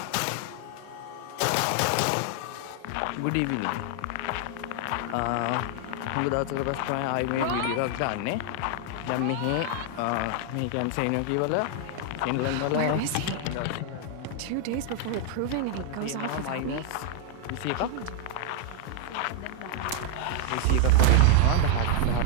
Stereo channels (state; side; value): different; both; correlation 0.00